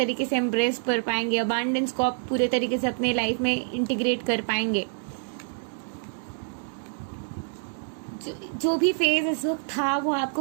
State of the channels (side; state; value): left; silent; digital silence